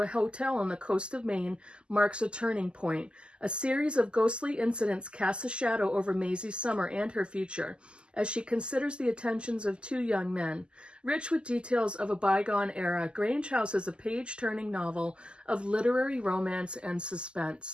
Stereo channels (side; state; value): left; late; 0.050 ms